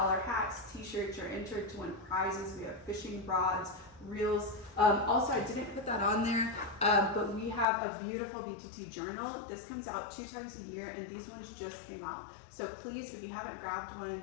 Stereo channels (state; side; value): drops out; right; at 7.7 s